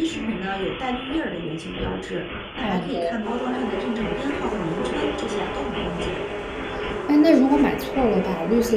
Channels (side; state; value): both; identical; correlation 1.00